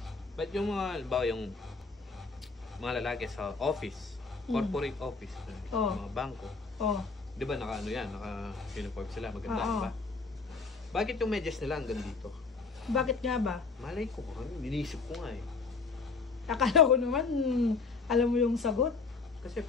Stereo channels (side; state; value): right; quieter; 4.4 dB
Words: Ba't yung mga, halimbawa yung mga lalaki sa office, corporate office, mga bangko, Oh. di ba naka ano yan, naka-uniform sila, maganda, Oo. di ba? Bakit yung medyas nila hanggang dito? Bakit nga ba? Malay ko, inisip ko nga eh. Akala ko naman, alam mo yung sagot. Kasi